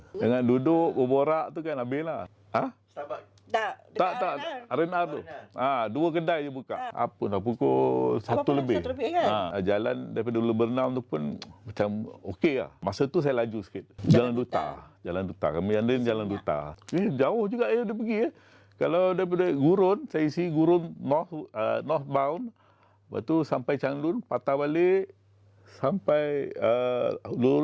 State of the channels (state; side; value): identical; both; correlation 1.00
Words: Jangan duduk berborak tu kan habis lah. Starbucks. Tak. Arena tu. 2 kedai je buka. Apa dah pukul 1 lebih. 1 lebih kan? Jalan daripada Ulu Bernam tu pun macam okey lah. Masa tu saya laju sikit. Jalan Duta. Kami yang lain Jalan Duta. Jauh juga dia pergi. Kalau daripada Gurun, saya isi Gurun northbound, lepas tu sampai Changlun, patah balik, sampai